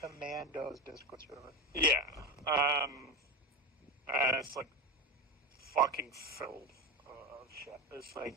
server. Commandos Discord server. Yeah. And it's like fucking filled of shit. It's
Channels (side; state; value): both; normal; correlation 0.20